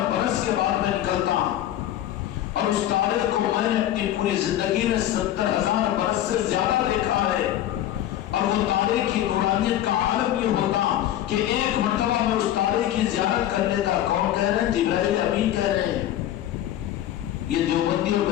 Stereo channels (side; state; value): right; quieter; 12.4 dB